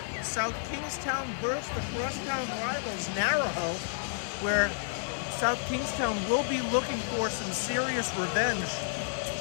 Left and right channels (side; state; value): right; silent; 57 dB below the other